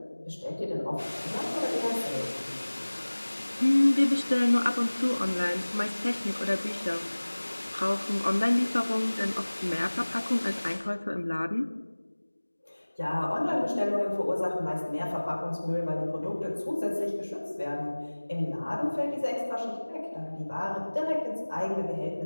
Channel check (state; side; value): inverted; both; correlation -1.00